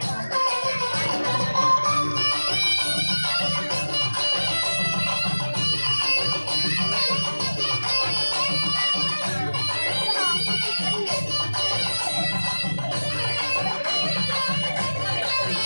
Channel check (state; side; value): inverted; both; correlation -1.00